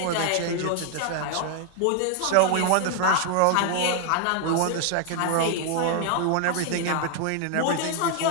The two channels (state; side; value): different; both; correlation 0.00